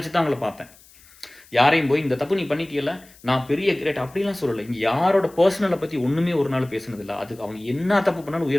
தான் அவங்கள பார்த்தேன். யாரையும் போய் இந்த தப்பு நீ பண்ணிட்டீயல்ல, நான் பெரிய கிரேட் அப்படிலாம் சொல்லல. இங்க யாரோட பெர்சனல பத்தி ஒண்ணுமே ஒரு நாள் பேசுனதில்ல. அதுக்கு அவங்க என்ன தப்பு பண்ணாலும்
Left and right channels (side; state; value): left; noise; hiss, 26 dB below the sound